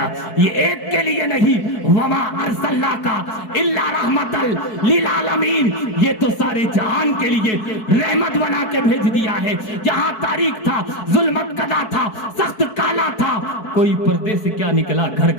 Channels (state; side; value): late; right; 4.6 ms